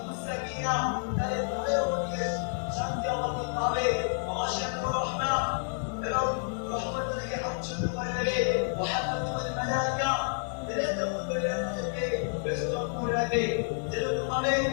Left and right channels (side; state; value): right; silent; digital silence